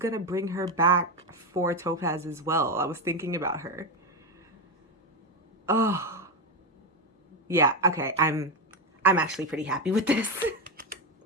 bring her back for Topaz as well. I was thinking about her. Oh. Yeah, okay. I'm actually pretty happy with this.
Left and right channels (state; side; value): normal; both; correlation 0.11